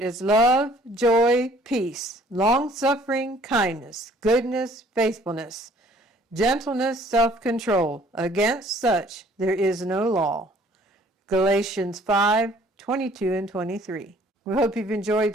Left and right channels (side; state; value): both; normal; correlation 0.57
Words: is love, joy, peace, long-suffering, kindness, goodness, faithfulness, gentleness, self-control. Against such there is no law. Galatians 5:22 and 23. We hope you've enjoyed